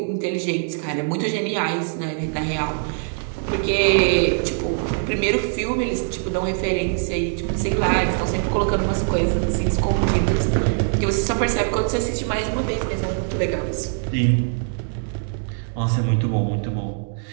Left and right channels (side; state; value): left; silent; digital silence